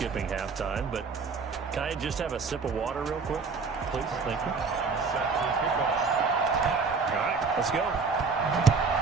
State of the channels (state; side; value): quieter; left; 4.8 dB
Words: halftime, but can I just have a sip of water real quick? Please, thank you. All right, let's go.